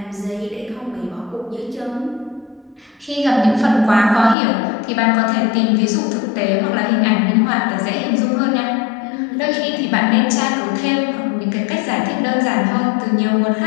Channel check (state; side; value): drops out; right; at 4.4 s